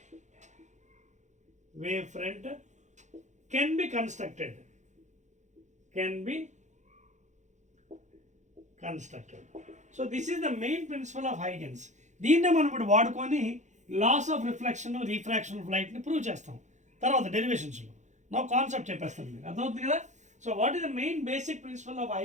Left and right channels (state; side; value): late; left; 0.35 ms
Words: wavefront can be constructed. So this is the main principle of Huygens. దీన్నే మనం ఇప్పుడు వాడుకొని laws of reflection refraction of లైట్ని prove చేస్తాం తర్వాత డెరివేషన్స్లో. నా concept చెప్పేస్తాను మీకు, అర్థమవుతుంది కదా. So what is the main basic principle of